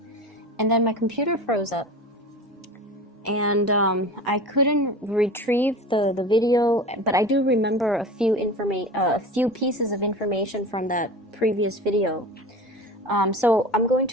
And then my computer froze up, and I couldn't retrieve the video, but I do remember a few pieces of information from that previous video. So I'm going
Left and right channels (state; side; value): normal; both; correlation 0.33